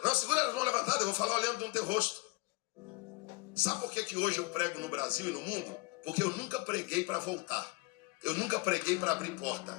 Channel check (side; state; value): right; quieter; 24.2 dB